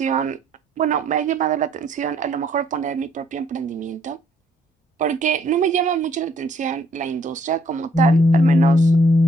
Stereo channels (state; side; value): normal; both; correlation 0.65